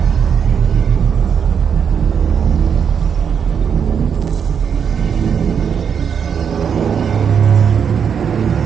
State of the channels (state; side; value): quieter; left; 7.2 dB